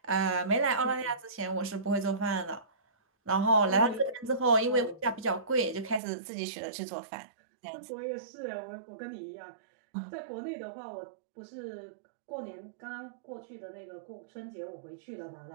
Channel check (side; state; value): left; drops out; at 6.0 s